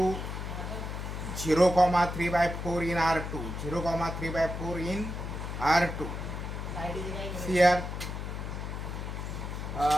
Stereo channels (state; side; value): noise; left; hum, 5 dB below the sound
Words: 0,3/4 in R2. 0,3/4 in R2. Here